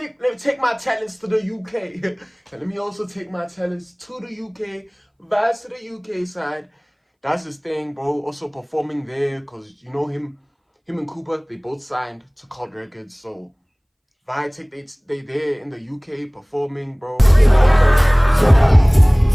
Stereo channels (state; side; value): identical; both; correlation 1.00